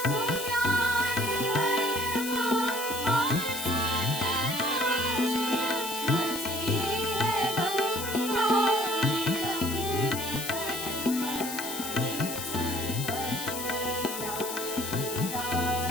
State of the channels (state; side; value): noise; left; hiss, 6 dB below the sound